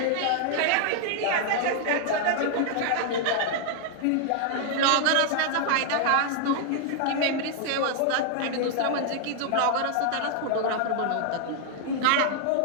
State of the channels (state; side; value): different; both; correlation 0.00